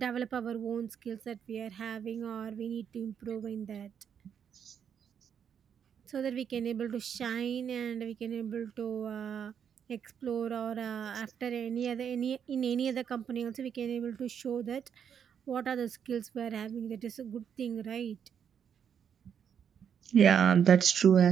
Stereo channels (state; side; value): quieter; left; 8.0 dB